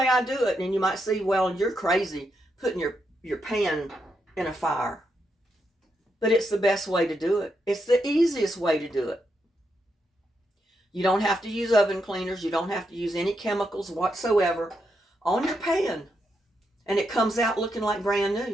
I do it. And you might say, well, you're crazy putting your pan in a fire. But it's the best way to do it. It's the easiest way to do it. You don't have to use oven cleaners. You don't have to use any chemicals whatsoever on your pan. And it comes out looking like brand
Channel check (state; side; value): normal; both; correlation 0.82